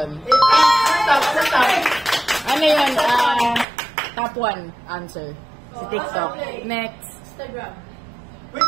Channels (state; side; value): drops out; left; at 3.7 s